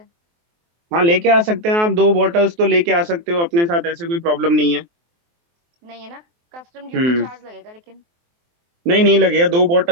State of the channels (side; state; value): left; late; 23 ms